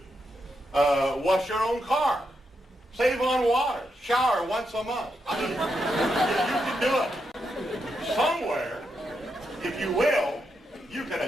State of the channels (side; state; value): both; normal; correlation 0.83